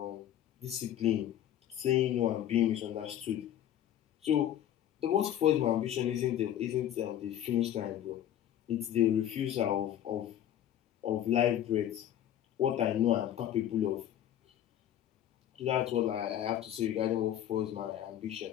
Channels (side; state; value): right; quieter; 11.2 dB